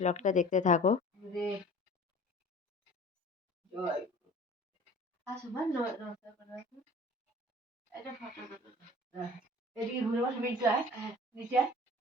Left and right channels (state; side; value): normal; both; correlation 0.44